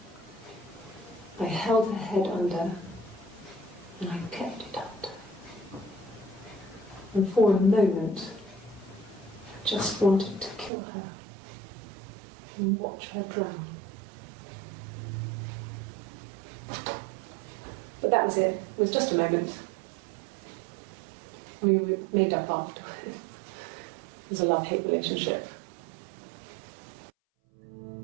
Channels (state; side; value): drops out; left; at 10.7 s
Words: I held her head under and I kept it out. And for a moment, I just wanted to kill her and watch her drown. But that was it. It was just a moment. We made up afterwards. It was a love-hate relationship.